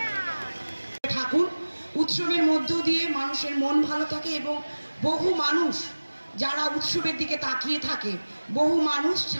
ঠাকুর উৎসবের মধ্য দিয়ে মানুষের মন ভালো থাকে এবং বহু মানুষ যারা উৎসবের দিকে তাকিয়ে থাকে, বহু মানুষ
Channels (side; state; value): both; inverted; correlation -1.00